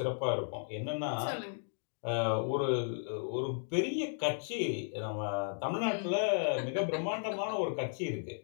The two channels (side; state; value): right; silent; digital silence